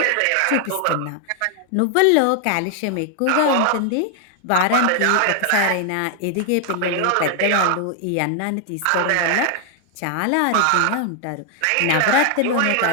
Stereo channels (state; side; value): different; both; correlation 0.00